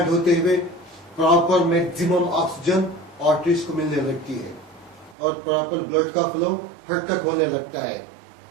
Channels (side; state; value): left; drops out; at 5.2 s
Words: होते हुए प्रॉपर मैक्सिमम ऑक्सीजन आर्टरीज को मिलने लगती है और प्रॉपर ब्लड का फ्लो हर तक होने लगता है।